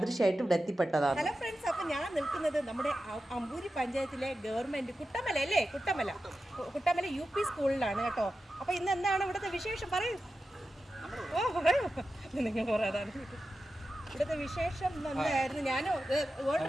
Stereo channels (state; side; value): normal; both; correlation 0.92